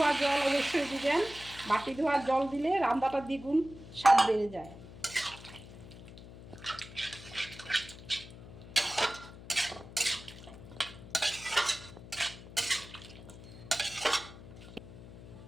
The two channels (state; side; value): noise; left; hum, 16 dB below the sound